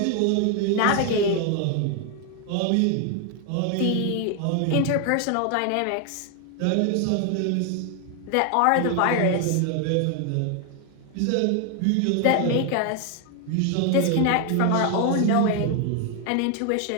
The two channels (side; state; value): both; different; correlation 0.01